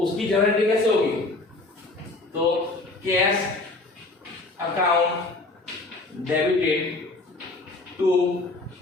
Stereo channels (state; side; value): quieter; right; 3.1 dB